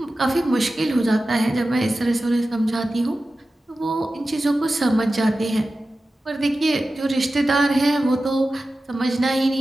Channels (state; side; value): normal; both; correlation 0.94